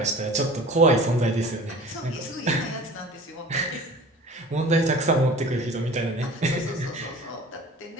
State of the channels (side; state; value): both; normal; correlation 0.42